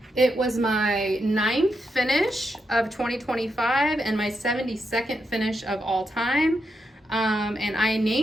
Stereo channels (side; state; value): both; normal; correlation 0.84